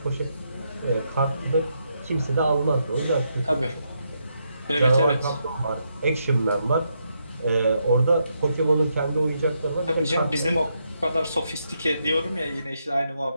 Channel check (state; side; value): inverted; both; correlation -0.80